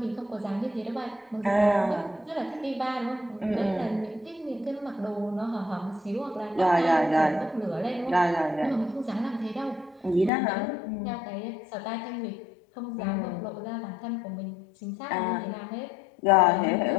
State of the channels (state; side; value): drops out; right; at 10.3 s